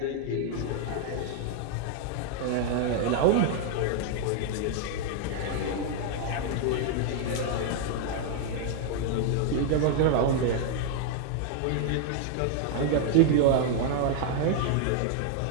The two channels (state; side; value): different; both; correlation 0.00